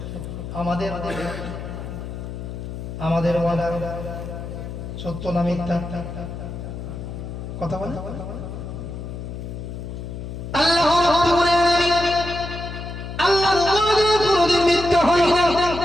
আমাদের ওয়াদা সত্য না মিথ্যা? কথা বলে। আল্লাহ রাব্বুল আলামিন, আল্লাহর ওয়াদা কোনদিন মিথ্যা হয় না।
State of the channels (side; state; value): left; noise; hum, 8 dB below the sound